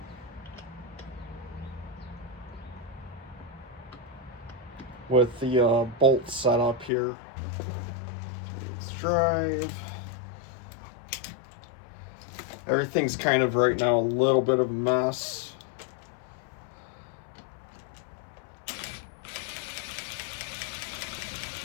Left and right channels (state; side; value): drops out; right; at 6.9 s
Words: with the bolts set up here. Let's drive. Everything's kind of right now a little bit of a mess.